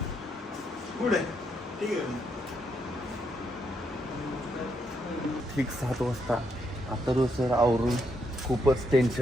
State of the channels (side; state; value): both; normal; correlation 0.77